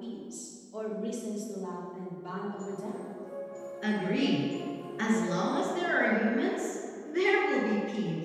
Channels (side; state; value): both; identical; correlation 1.00